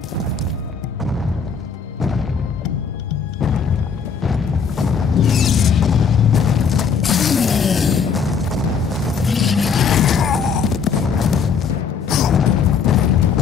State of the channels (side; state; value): right; quieter; 6.1 dB